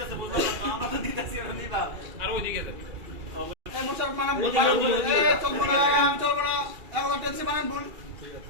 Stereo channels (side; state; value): left; late; 2.4 ms